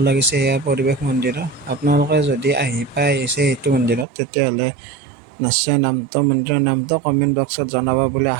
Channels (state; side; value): drops out; left; at 4.0 s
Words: লাগিছে এয়া পৰিৱেশ মন্দিৰৰ। আপোনালোকে যদি আহিছে এইটো মন্দিৰত, তেতিয়াহ'লে নিশ্চয় মন্দিৰৰ নামটো কমেণ্ট বক্সত জনাব বুলি